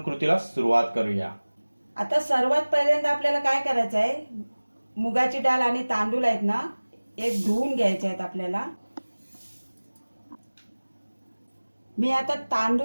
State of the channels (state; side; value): inverted; both; correlation -1.00